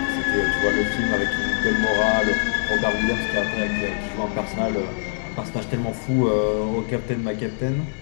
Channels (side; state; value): right; silent; 63 dB below the other